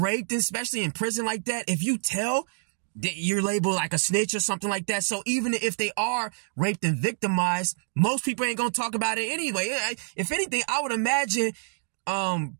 especially in prison like that, if you tell that you're labeled like a snitch or something like that. So even if they are raped and victimized, most people ain't gonna talk about it anyway. If anything, I would imagine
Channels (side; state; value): left; silent; digital silence